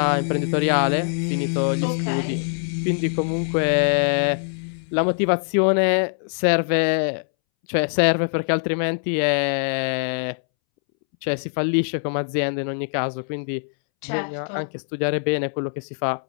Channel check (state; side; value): silent; right; 64 dB below the other